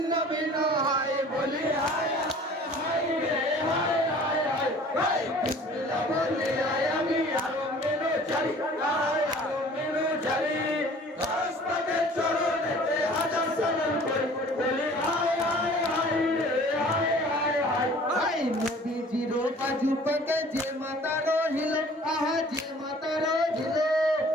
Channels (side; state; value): both; normal; correlation 0.49